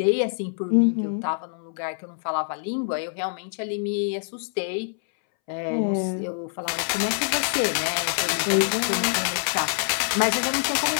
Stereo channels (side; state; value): right; silent; 62 dB below the other